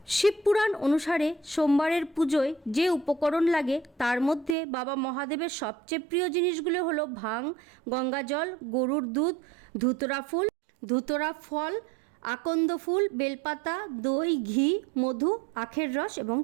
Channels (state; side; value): drops out; left; at 4.5 s